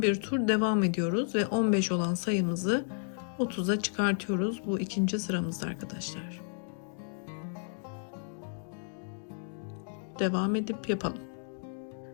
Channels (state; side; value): silent; right; digital silence